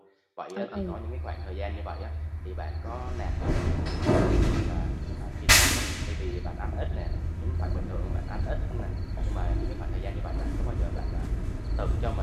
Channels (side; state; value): both; identical; correlation 1.00